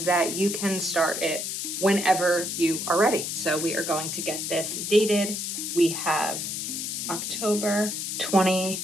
that you can start it whenever you are ready. So we are going to get this dated. We have October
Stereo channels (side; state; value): left; noise; hiss, 3 dB below the sound